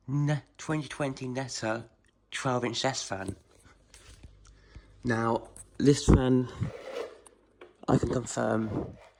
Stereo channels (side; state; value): both; identical; correlation 1.00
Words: 2020 Netta 12-inch desk fan. Now, this fan, I can confirm,